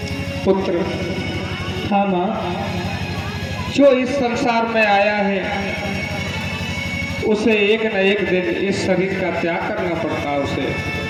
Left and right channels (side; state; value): both; identical; correlation 1.00